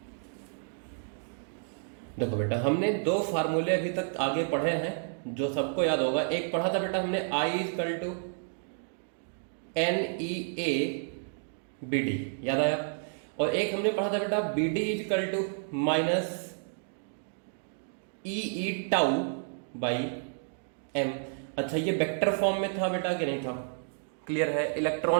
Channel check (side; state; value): left; silent; digital silence